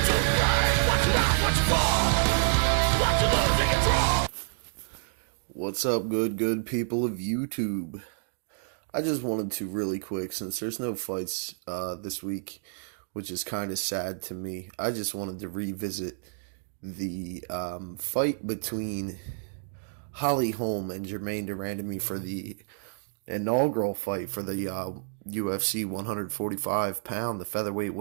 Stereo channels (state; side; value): silent; left; digital silence